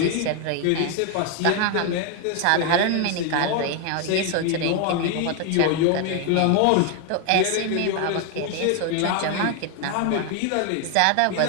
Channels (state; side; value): different; both; correlation 0.01